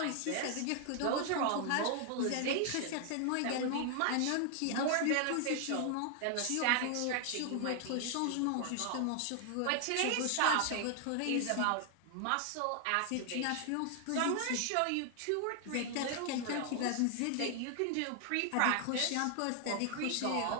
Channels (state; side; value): different; both; correlation 0.00